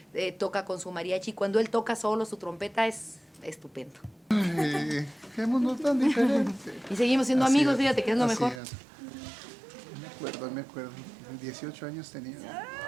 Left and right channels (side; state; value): left; drops out; at 8.6 s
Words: toca con su mariachi, cuando él toca solo su trompeta, es estupendo. Ay, qué mundo tan diferente. Y seguimos siendo Así amigos, es, fíjate que es lo así mejor. es. Me acuerdo. 18 años tenía.